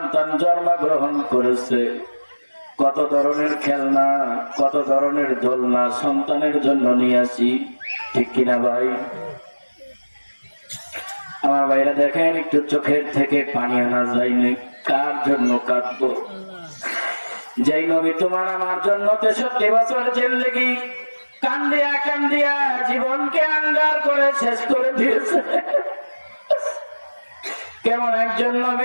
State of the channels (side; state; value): both; inverted; correlation -1.00